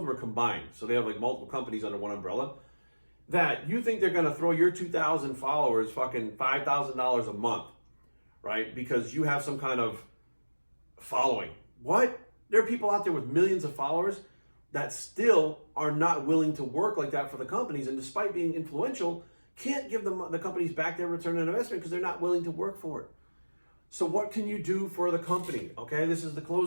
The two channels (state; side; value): inverted; both; correlation -1.00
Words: are combined. So they have like multiple companies under one umbrella. That you think they're going to throw your 2,000 followers fucking $5,000 a month, right? Because you have some kind of following. What? There are people out there with millions of followers that still are not willing to work like that for the companies, and despite being influential, can't give them the companies back their return on investment because they're not willing to work for it. So what can you do for the company? Okay, this is the